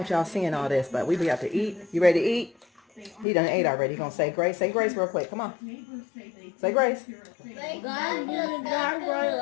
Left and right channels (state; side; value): drops out; right; at 3.2 s